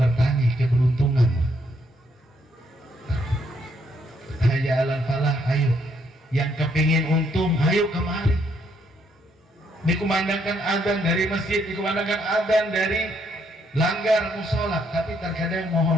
keberuntungan. Hayya 'alal falah, ayo. Yang kepingin untung, ayo kemari. Dikumandangkan adzan dari masjid, dikumandangkan adzan dari langgar musola, tapi terkadang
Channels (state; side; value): normal; both; correlation 0.72